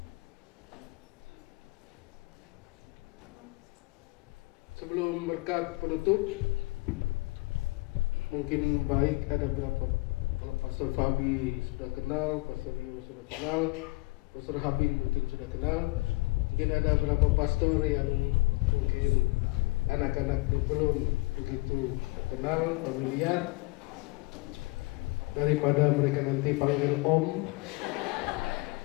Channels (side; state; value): right; quieter; 24.1 dB